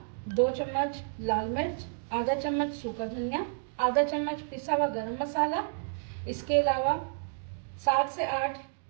2 चम्मच लाल मिर्च, आधा चम्मच सूखा धनिया, आधा चम्मच पिसा हुआ गरम मसाला। इसके अलावा 7 से 8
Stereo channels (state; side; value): silent; left; digital silence